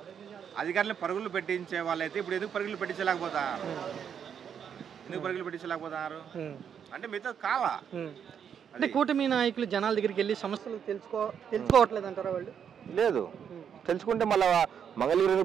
అధికారులను పరుగులు పెట్టించే వాళ్ళైతే ఇప్పుడు ఎందుకు పరుగులు పెట్టించలేకపోతారు? ఎందుకు పరుగులు పెట్టించలేకపోతారు అంటే మీతో కావా? అంటే కూటమి నాయకులు జనాల దగ్గరికి వెళ్ళి సమస్యలు తెలుసుకోవట్లేదు అంటారా? వాళ్ళు లేదు, తెలుసుకుంటే మళ్ళీ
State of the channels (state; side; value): quieter; left; 7.9 dB